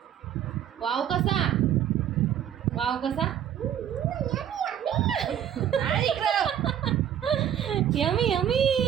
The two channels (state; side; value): quieter; left; 9.9 dB